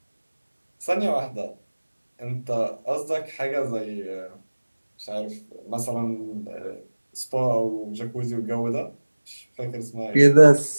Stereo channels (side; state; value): both; inverted; correlation -1.00